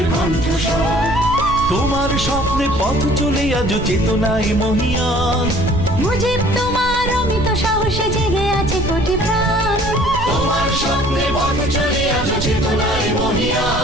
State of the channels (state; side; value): noise; right; rumble, 8 dB below the sound